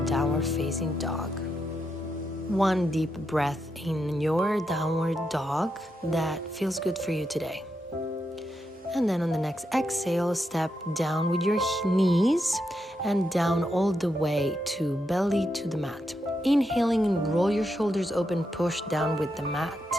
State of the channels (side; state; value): both; normal; correlation 0.83